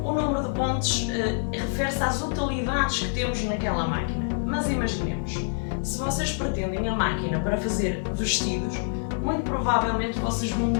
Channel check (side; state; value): right; silent; 61 dB below the other